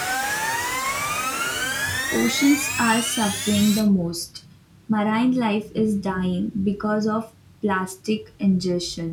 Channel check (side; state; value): both; identical; correlation 1.00